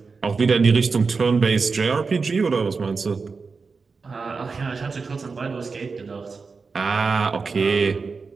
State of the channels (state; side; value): quieter; left; 4.7 dB